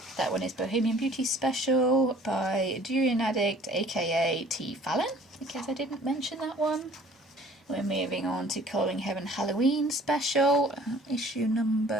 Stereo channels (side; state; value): both; normal; correlation 0.52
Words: that one is Bohemian Beauty Special by Durian Addict, aka T. Fallon, in case I didn't mention that one. We're moving on to Colouring Heaven Halloween Special, issue